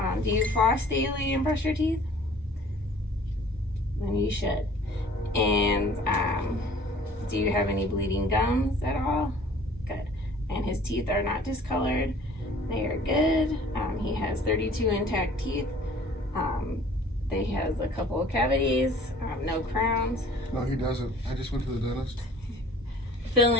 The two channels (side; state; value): both; normal; correlation 0.51